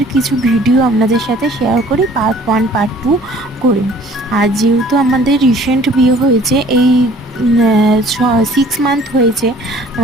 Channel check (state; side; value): normal; both; correlation 0.53